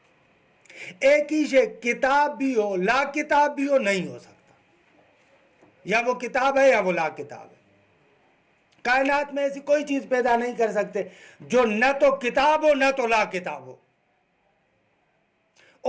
ایک ہی شے کتاب بھی ہو لا کتاب بھی ہو نہیں ہو سکتا، یا وہ کتاب ہے یا وہ لا کتاب ہے۔ کائنات میں ایسی کوئی چیز پیدا نہیں کر سکتے جو نہ تو کتاب ہو نہ تو لا کتاب ہو،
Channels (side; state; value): both; identical; correlation 1.00